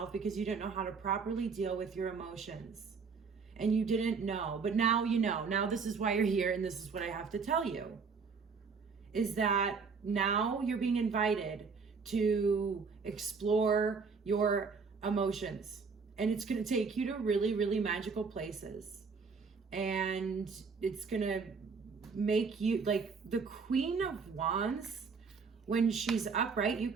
because you didn't know how to properly deal with your emotions. And you didn't know, but now you know. Now this is why you're here, and this is what I have to tell you, is that now you're being invited to explore your emotions. And it's going to take you to really, really magical places. And it's going to make you, like, the Queen of Wands, when she's upright, you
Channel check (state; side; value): quieter; left; 5.2 dB